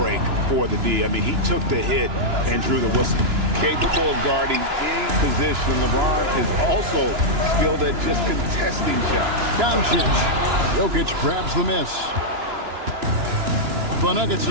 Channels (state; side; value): late; left; 2.9 ms